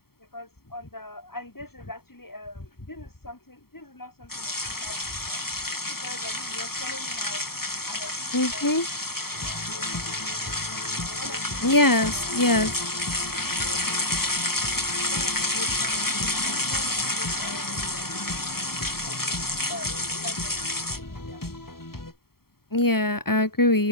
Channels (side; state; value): right; late; 0.94 ms